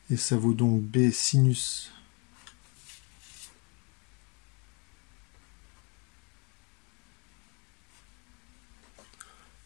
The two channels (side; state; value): right; quieter; 32.8 dB